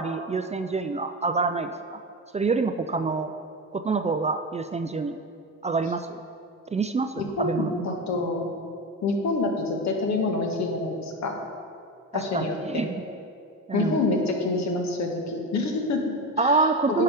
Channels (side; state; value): both; normal; correlation 0.20